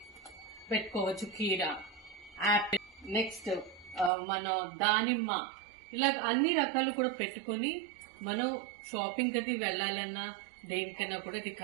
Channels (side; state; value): left; drops out; at 4.1 s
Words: పెట్టుకోవచ్చు. కీరా, యాపిల్, నెక్స్ట్ మన దానిమ్మ, ఇలా అన్ని రకాలు కూడా పెట్టుకొని మనం షాపింగ్ అది వెళ్ళాలన్నా దేనికైనా కూడా ఇది